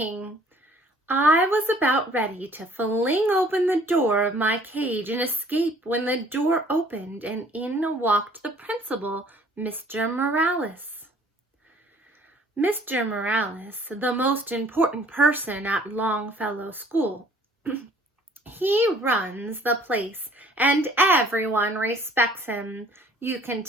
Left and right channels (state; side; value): normal; both; correlation 0.55